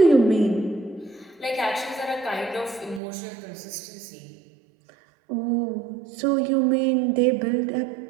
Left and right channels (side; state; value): left; drops out; at 3.0 s